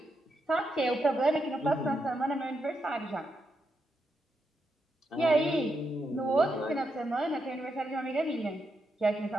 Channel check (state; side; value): normal; both; correlation 0.83